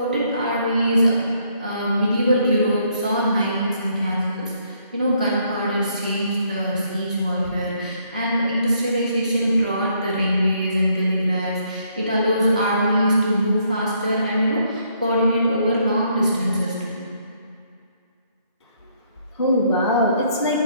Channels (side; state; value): both; inverted; correlation -0.70